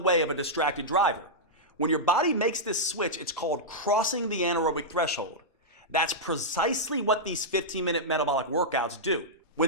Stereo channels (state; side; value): normal; both; correlation -0.09